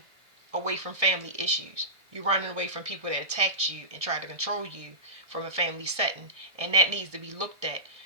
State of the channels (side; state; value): left; late; 1.6 ms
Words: away from family issues. You're running away from people that attacked you and tried to control you from a family setting. And that needs to be looked at,